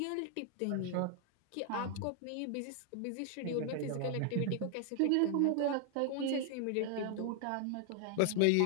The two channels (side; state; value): both; different; correlation 0.00